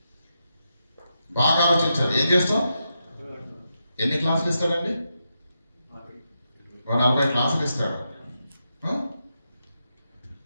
బాగా ఆలోచించాలి. ఏం చేస్తాం? ఎన్ని క్లాసులు ఇస్తాడండి? 40 క్లాసులు ఇస్తాడు.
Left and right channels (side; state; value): both; inverted; correlation -0.86